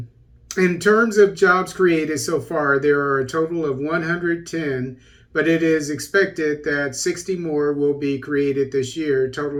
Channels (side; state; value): both; identical; correlation 1.00